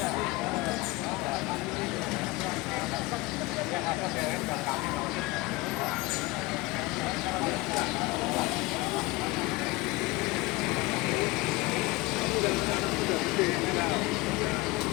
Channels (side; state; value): right; quieter; 21.9 dB